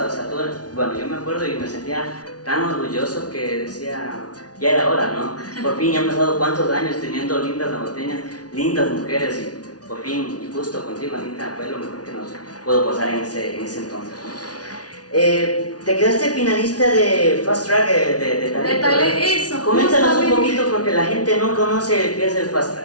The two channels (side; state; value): right; late; 0.68 ms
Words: o sea, bueno, yo me acuerdo y me sentía tan orgulloso que decía, ya era hora, ¿no? Por fin, ya han pasado cuántos años teniendo lindas ambateñas, lindas mujeres, y por fin, y justo contigo, Anita, fue lo mejor que nos pudo pasar en ese entonces, ¿no? Te quedaste finalista de Fast Track de talento. Eso. Coméntanos un poquito porque la gente no conoce qué es el Fast